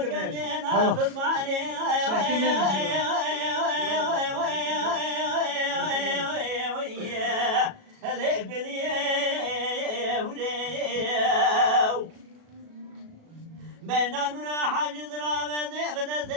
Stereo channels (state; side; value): late; left; 37 ms